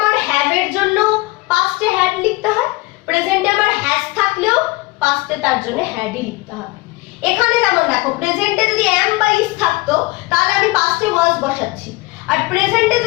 হ্যাভ এর জন্য পাস্টে হ্যাড লিখতে হয়, প্রেজেন্টে আমার হ্যাজ থাকলেও পাস্টে তার জন্য হ্যাডই লিখতে হবে। এখানে যেমন দেখো প্রেজেন্টে যদি am বা is থাকতো তাহলে আমি পাস্টে was বসাচ্ছি, আর প্রেজেন্টে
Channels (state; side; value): quieter; right; 22.4 dB